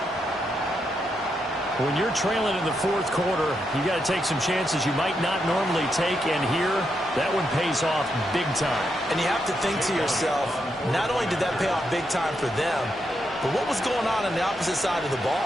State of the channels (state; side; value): normal; both; correlation 0.82